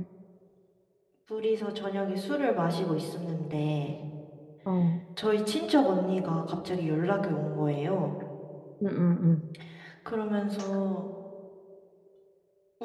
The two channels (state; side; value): identical; both; correlation 1.00